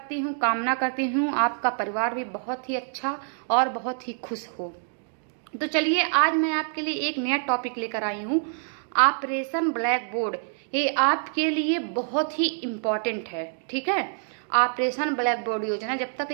हूँ, कामना करती हूँ आपका परिवार भी बहुत ही अच्छा और बहुत ही खुश हो। तो चलिए, आज मैं आपके लिए एक नया टॉपिक लेकर आई हूँ, ऑपरेशन ब्लैक बोर्ड। ये आपके लिए बहुत ही इम्पॉर्टेंट है, ठीक है। ऑपरेशन ब्लैक बोर्ड योजना, जब तक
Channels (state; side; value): silent; left; digital silence